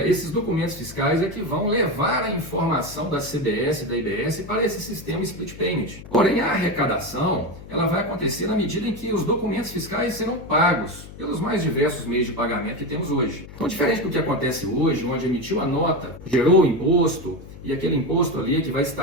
esses documentos fiscais é que vão levar a informação da CBS e da IBS para esse sistema split payment. Porém, a arrecadação ela vai acontecer na medida em que os documentos fiscais serão pagos pelos mais diversos meios de pagamento que temos hoje. Então, diferente do que acontece hoje, onde emitiu a nota, gerou o imposto, e aquele imposto ali que vai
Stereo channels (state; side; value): noise; left; hum, 15 dB below the sound